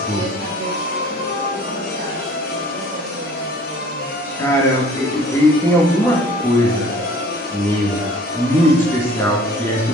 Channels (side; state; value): both; normal; correlation 0.50